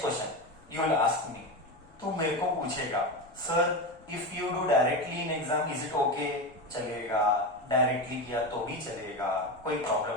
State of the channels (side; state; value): left; noise; rumble, 28 dB below the sound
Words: question you will ask me, तू मेरे को पूछेगा, sir if you do directly in exam is it okay? चलेगा. डायरेक्टली किया तो भी चलेगा, कोई